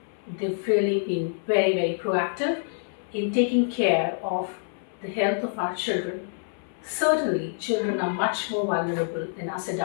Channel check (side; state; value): right; silent; 60 dB below the other